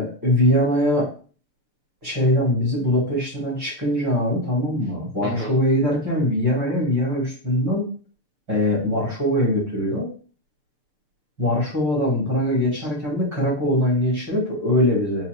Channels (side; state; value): left; late; 6.7 ms